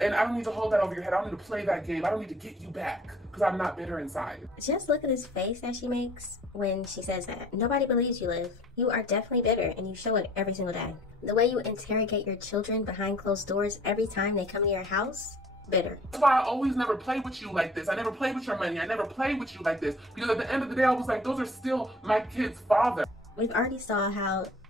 I don't need to hold that over your head. I don't need to play that game. I don't need to get you back because I'm not bitter inside. Just look at his face that she makes when she says that. Nobody believes you, Liv. You are definitely bitter and you show it every single day. The way you interrogate your children behind closed doors every time they come to your house, bitter. That's why I always never play with you like this. I never play with your money. I never play with you like this. Because at the end of the day, I was like, those are still my kid's father. We've already saw how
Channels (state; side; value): normal; both; correlation 0.52